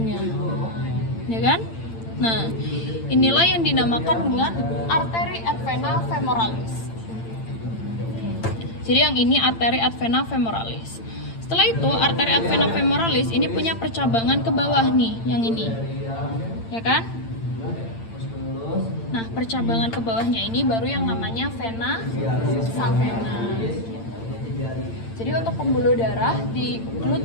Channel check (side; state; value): right; late; 8.8 ms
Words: Ya kan? Nah, inilah yang dinamakan dengan arteri et vena femoralis. Jadi yang ini arteri et vena femoralis. Setelah itu, arteri et vena femoralis ini punya percabangan ke bawah nih, yang ini. Ya kan? Nah, percabangan ke bawahnya ini baru yang namanya vena savena. Jadi untuk pembuluh darah di